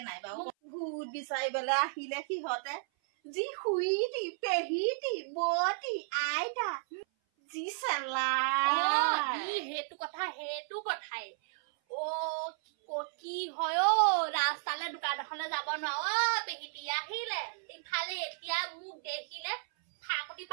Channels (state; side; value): silent; left; 55 dB below the other